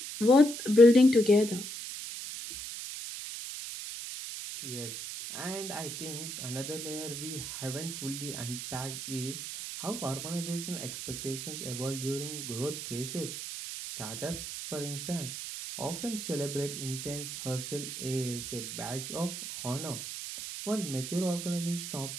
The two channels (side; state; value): right; noise; hiss, 7 dB below the sound